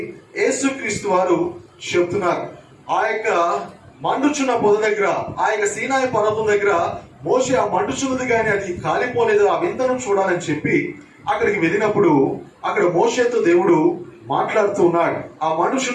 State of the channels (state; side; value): identical; both; correlation 1.00